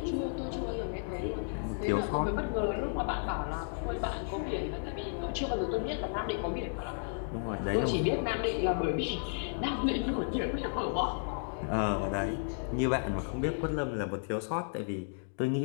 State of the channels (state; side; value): silent; right; digital silence